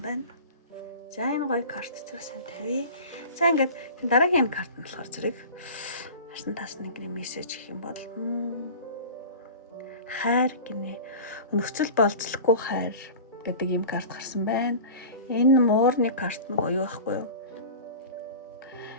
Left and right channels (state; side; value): inverted; both; correlation -0.36